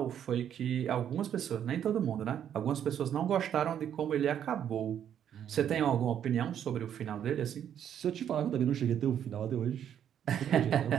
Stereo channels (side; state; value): left; quieter; 9.5 dB